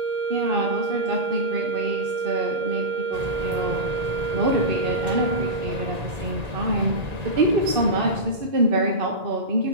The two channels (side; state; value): left; late; 1.9 ms